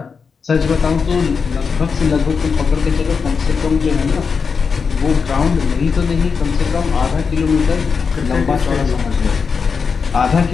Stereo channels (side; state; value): right; quieter; 5.6 dB